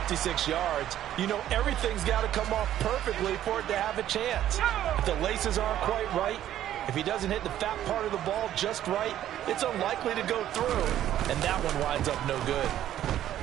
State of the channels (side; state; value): left; quieter; 11.9 dB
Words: yards, you know everything's got to come off perfectly for it to have a chance. If the laces aren't quite right, if he doesn't hit the fat part of the ball just right, it's unlikely to go through. And that one winds up no good.